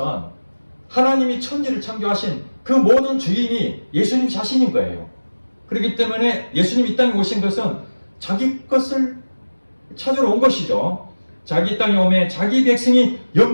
하나님이 천지를 창조하신 그 모든 주인이 예수님 자신인 거예요. 그렇기 때문에 예수님이 이 땅에 오신 것은 자기 것을 찾으러 온 것이죠. 자기 땅에 오매 자기 백성이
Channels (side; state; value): both; inverted; correlation -1.00